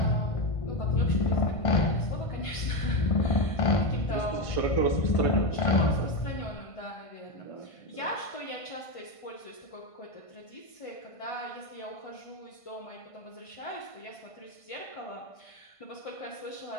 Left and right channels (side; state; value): right; late; 1.5 ms